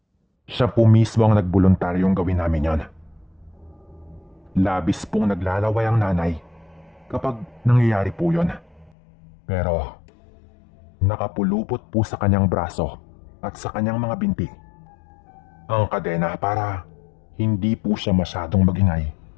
Siya po mismo ang nagboluntaryong gawin namin yon. Labis pong naglalaway ang nanay kapag nangyayari po yon. Pero Nakapulupot po sa kanyang braso at sa kanyang mga binti ang kadena para hindi po siya masyadong magingay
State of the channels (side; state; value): right; drops out; at 8.9 s